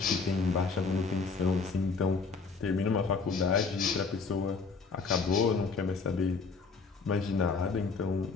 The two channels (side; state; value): right; quieter; 4.7 dB